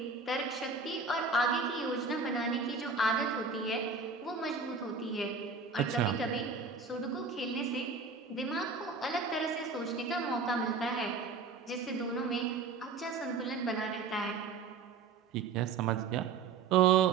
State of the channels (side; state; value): left; quieter; 4.8 dB